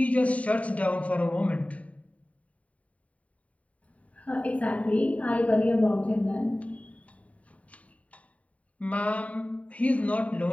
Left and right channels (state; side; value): late; right; 0.067 ms